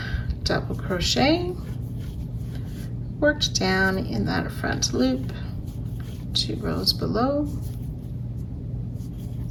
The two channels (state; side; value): identical; both; correlation 1.00